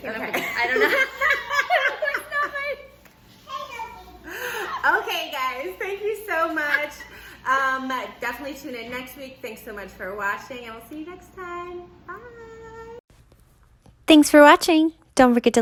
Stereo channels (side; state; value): both; identical; correlation 1.00